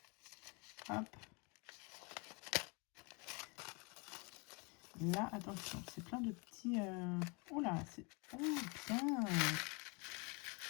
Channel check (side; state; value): right; quieter; 31.1 dB